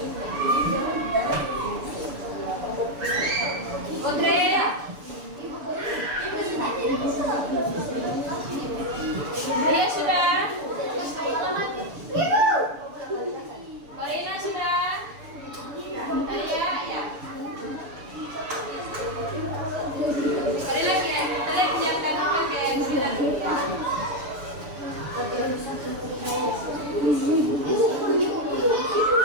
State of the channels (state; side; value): late; left; 6.9 ms